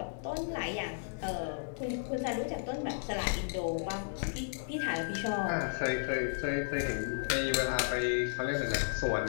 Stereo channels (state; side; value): silent; right; 55 dB below the other